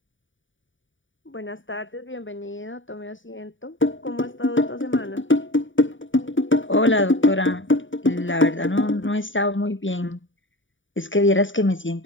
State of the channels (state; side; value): late; right; 0.56 ms